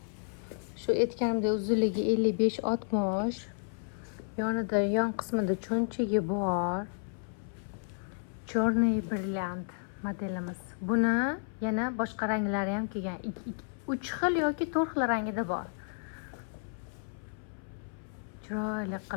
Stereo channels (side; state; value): right; silent; 56 dB below the other